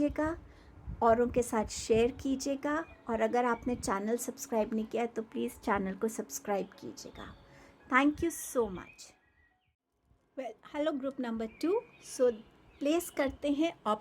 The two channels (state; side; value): identical; both; correlation 1.00